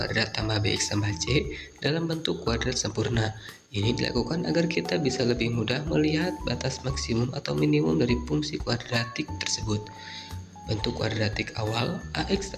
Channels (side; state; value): both; identical; correlation 1.00